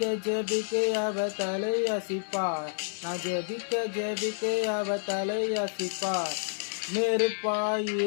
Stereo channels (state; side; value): silent; right; digital silence